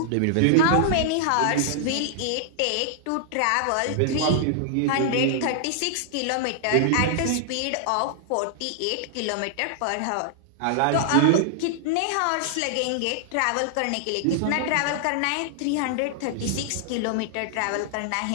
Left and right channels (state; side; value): different; both; correlation -0.01